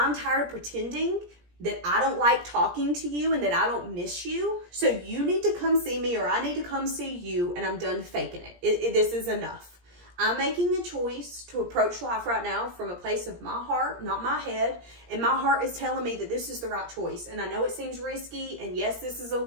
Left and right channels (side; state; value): left; late; 17 ms